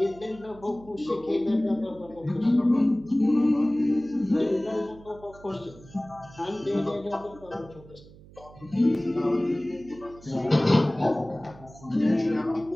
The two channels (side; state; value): right; noise; hum, 21 dB below the sound